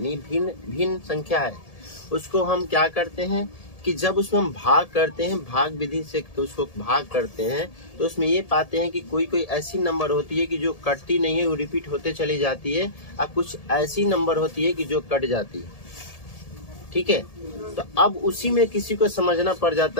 भिन्न भिन्न संख्या है, उसको हम क्या करते हैं कि जब उसमें हम भाग करते हैं, भाग विधि से तो उसको भाग करते हैं, तो उसमें ये पाते हैं कि कोई कोई ऐसी नंबर होती है कि जो कटती नहीं है, वो रिपीट होते चली जाती है, और कुछ ऐसी नंबर होती है कि जो कट जाती है। ठीक है, तो अब उसी में किसी को समझना पड़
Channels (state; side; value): late; right; 1.7 ms